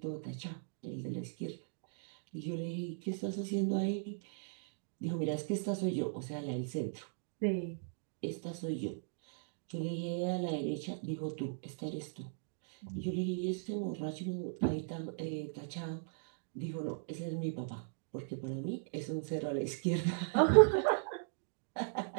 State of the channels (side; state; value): left; silent; digital silence